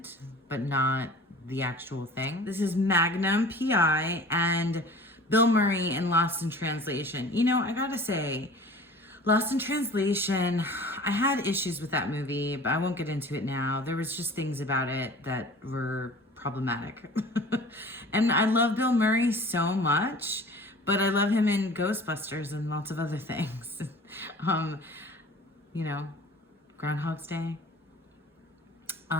but not the actual thing. This is Magnum PI and Bill Murray in Lost in Translation. You know, I gotta say, Lost in Translation, I had issues with that movie, but I won't get into it now. There was just things about it that were problematic. And I love Bill Murray so much, but I love him in Ghostbusters and lots of other things. You know, Groundhog's Day.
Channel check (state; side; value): normal; both; correlation 0.43